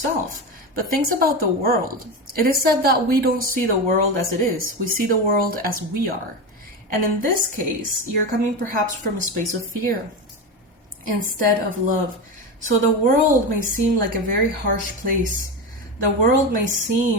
but things about the world. It is said that we don't see the world as it is. We see the world as we are. And in this case, you're coming perhaps from a space of fear instead of love. So the world may seem like a very harsh place. The world may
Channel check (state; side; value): normal; both; correlation 0.19